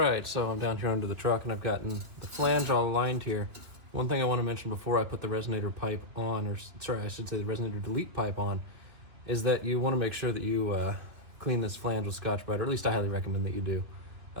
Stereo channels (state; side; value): late; left; 3.1 ms